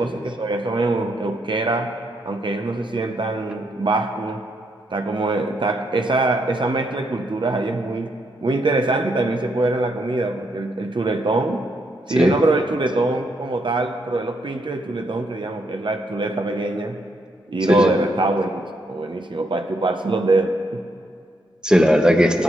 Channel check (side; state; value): both; normal; correlation 0.77